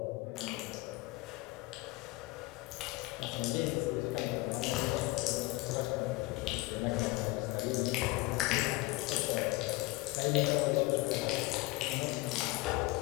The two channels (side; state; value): right; quieter; 22.1 dB